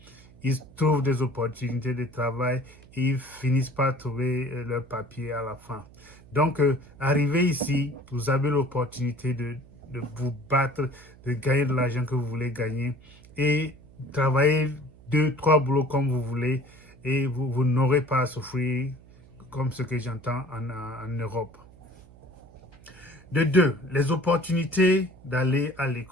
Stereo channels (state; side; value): noise; right; hum, 23 dB below the sound